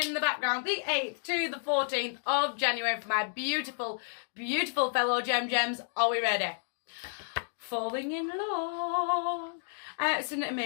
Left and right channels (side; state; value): right; silent; digital silence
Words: the background. The 8th to the 14th of January for my beautiful, beautiful fellow Gem-Gems. Are we ready? Falling in love. It's an